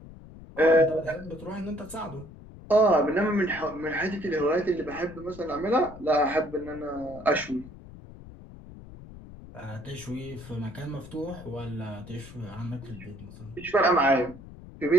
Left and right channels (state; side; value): noise; left; rumble, 17 dB below the sound